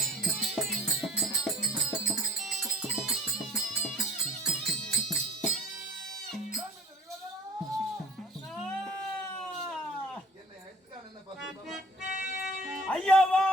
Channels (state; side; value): normal; both; correlation 0.51